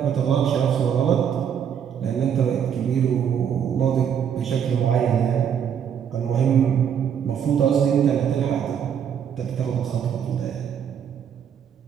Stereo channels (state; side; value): quieter; left; 8.3 dB